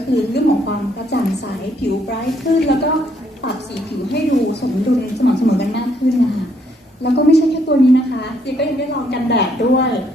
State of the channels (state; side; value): normal; both; correlation 0.70